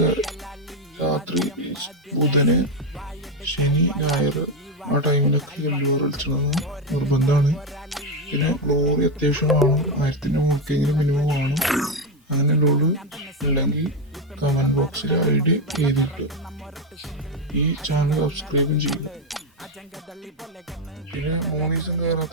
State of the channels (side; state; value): both; normal; correlation 0.08